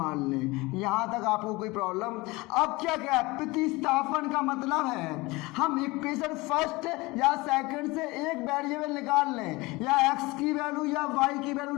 लें। यहाँ तक आपको कोई प्रॉब्लम? अब क्या क्या है प्रतिस्थापन का मतलब है हम इक्वेशन फर्स्ट या सेकंड से एक वेरिएबल निकाल लें, या x की वैल्यू या y की वैल्यू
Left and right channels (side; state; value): right; quieter; 22.7 dB